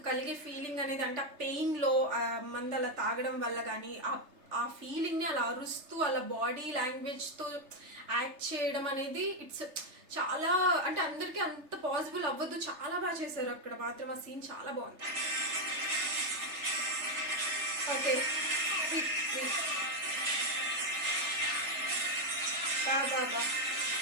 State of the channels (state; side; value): late; left; 3.3 ms